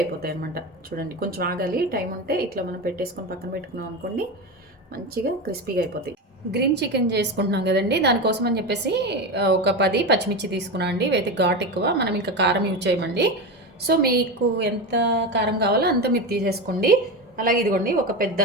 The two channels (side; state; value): both; normal; correlation 0.20